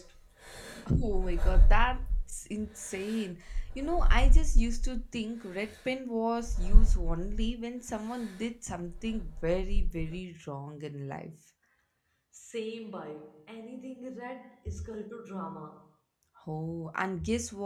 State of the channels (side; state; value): both; identical; correlation 1.00